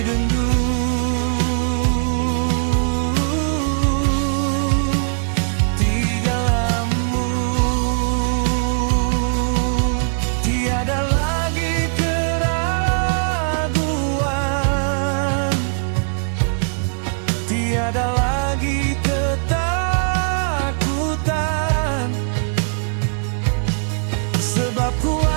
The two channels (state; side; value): silent; left; digital silence